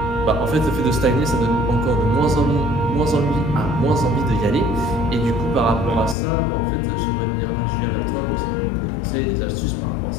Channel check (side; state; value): right; drops out; at 6.2 s